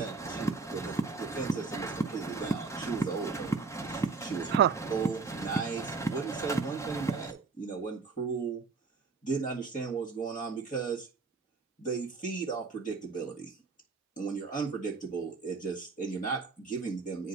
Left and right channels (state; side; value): quieter; left; 4.5 dB